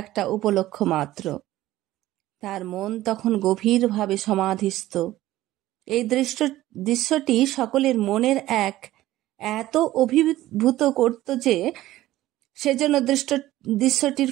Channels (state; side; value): quieter; left; 15.5 dB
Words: একটা উপলক্ষ মাত্র। তার মন তখন গভীরভাবে সমাধিস্থ। এই দৃশ্যটি সকলের মনের এত অভিভূত করত যে সেজন্য দৃশ্যটির